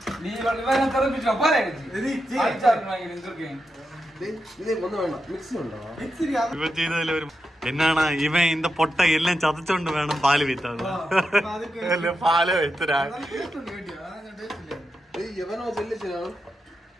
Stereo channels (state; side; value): normal; both; correlation 0.87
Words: ഇവ ചെയ്തതിൽ ഒരു എന്നാണ് ഇവൻ ഇന്റെ പൊട്ട എല്ലാം ചതച്ചോണ്ട് വേണം പാല് വിത്താൻ. പാല് വിത്തരാ